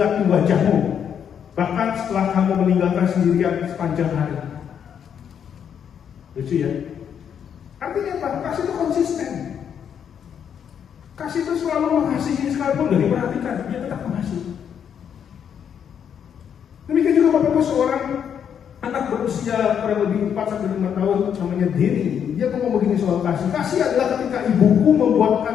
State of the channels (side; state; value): right; quieter; 8.2 dB